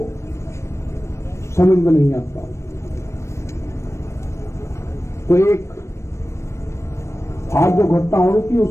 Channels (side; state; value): right; late; 0.13 ms